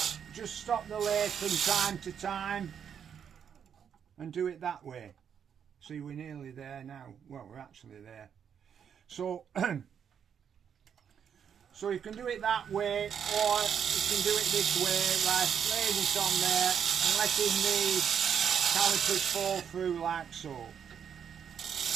just stop the lathe from time to time and do it that way. See, we're nearly there now. Well, we're actually there. So so you can do it that way, or you can do it this way, like laying it on there and letting the calipers fall through like so.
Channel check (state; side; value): quieter; left; 7.9 dB